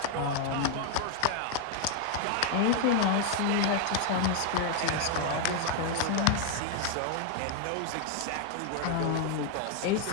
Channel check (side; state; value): both; different; correlation 0.00